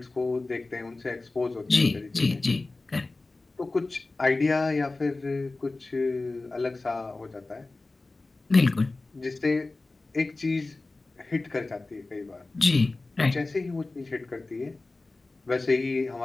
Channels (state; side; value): quieter; right; 3.3 dB